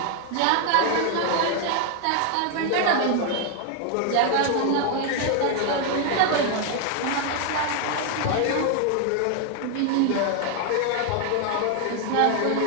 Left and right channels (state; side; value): different; both; correlation 0.00